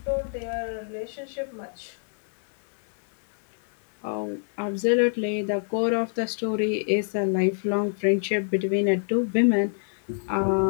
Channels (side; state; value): right; silent; 61 dB below the other